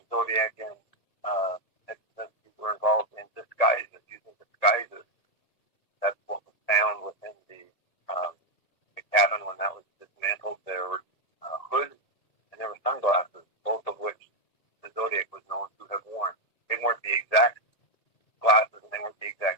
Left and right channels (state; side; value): late; right; 1.9 ms